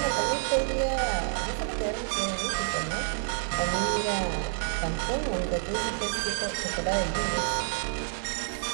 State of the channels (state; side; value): silent; left; digital silence